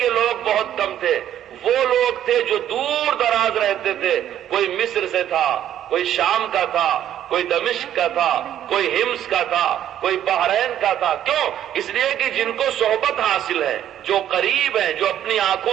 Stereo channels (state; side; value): quieter; left; 11.0 dB